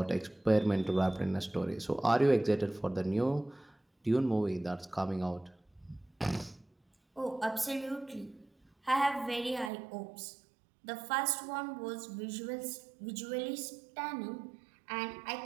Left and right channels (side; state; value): left; drops out; at 9.7 s